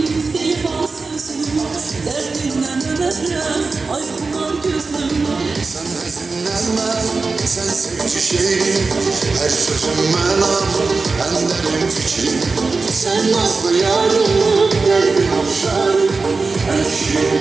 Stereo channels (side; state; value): left; quieter; 4.1 dB